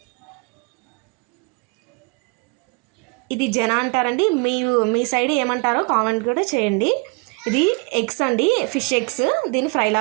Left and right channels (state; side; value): quieter; left; 31.0 dB